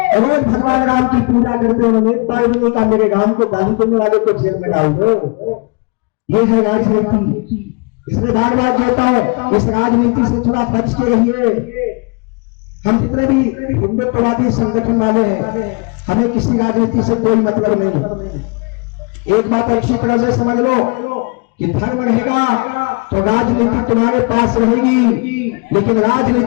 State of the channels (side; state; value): right; quieter; 31.2 dB